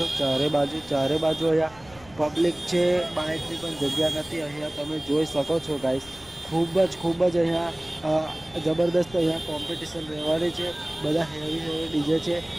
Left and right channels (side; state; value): left; noise; rumble, 23 dB below the sound